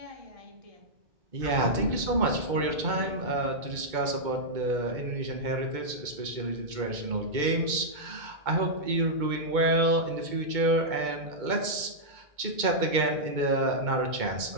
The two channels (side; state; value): left; late; 2.2 ms